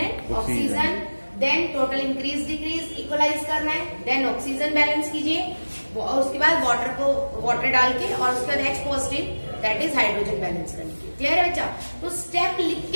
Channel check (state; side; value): inverted; both; correlation -1.00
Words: oxygen, then total increase decrease equalize करना है, देन ऑक्सीजन बैलेंस कीजिए और उसके बाद वाटर डाल के और उसके बाद H positive that is hydrogen balance करनी है। क्लियर है बच्चा? तो स्टेप लिख